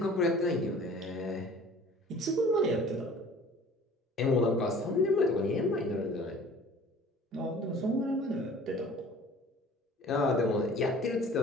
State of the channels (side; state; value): both; normal; correlation 0.48